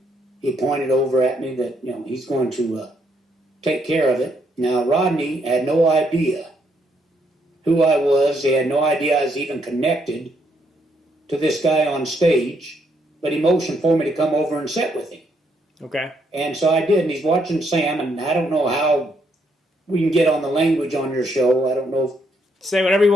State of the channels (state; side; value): normal; both; correlation 0.74